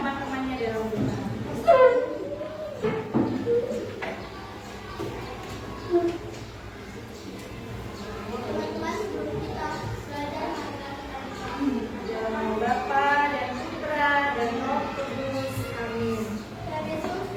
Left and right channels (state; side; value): identical; both; correlation 1.00